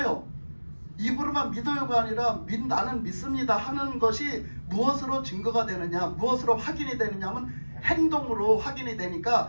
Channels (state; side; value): inverted; both; correlation -1.00